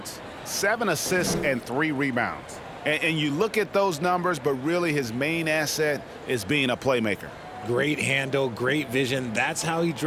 7 assists, and 3 rebounds. And you look at those numbers, but really his main asset is being a playmaker. Great handle, great vision. That's how he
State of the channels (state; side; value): identical; both; correlation 1.00